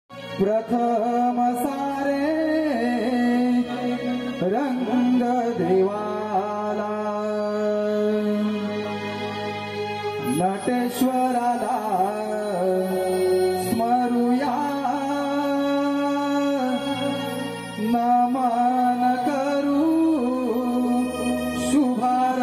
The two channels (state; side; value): identical; both; correlation 1.00